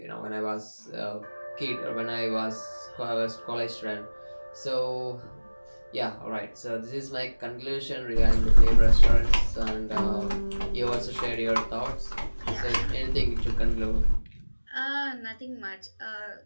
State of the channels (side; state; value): both; inverted; correlation -1.00